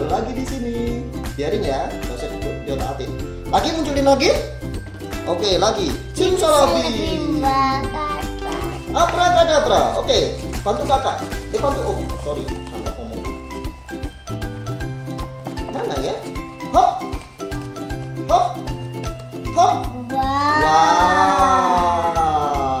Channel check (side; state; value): both; identical; correlation 1.00